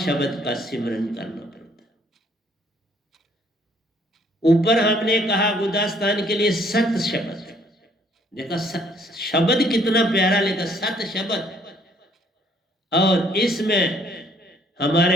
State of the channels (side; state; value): both; normal; correlation 0.63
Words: का सिमरन करना पड़ता है। ऊपर हमने कहा गुदास्तान के लिए सत शब्द, देखा शब्द कितना प्यारा लिखा, सत शब्द। और इसमें